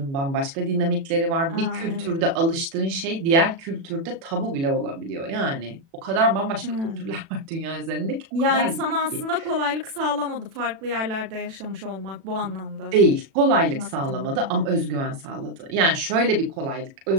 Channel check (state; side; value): late; left; 36 ms